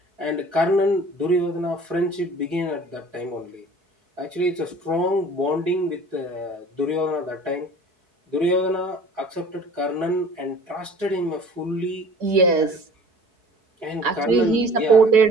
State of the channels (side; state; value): left; late; 4.7 ms